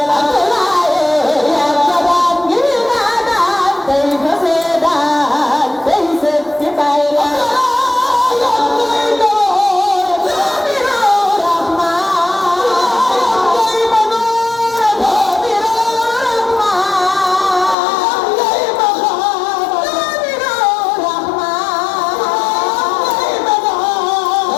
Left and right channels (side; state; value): right; drops out; at 17.8 s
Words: la Abdoulaye yàgg naan ñu fi daanaan day fa soo daan day seet ci baay la